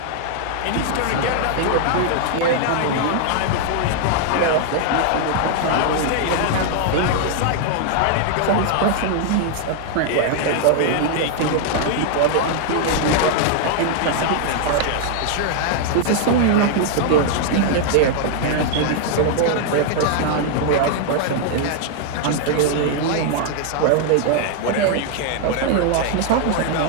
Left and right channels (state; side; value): different; both; correlation 0.00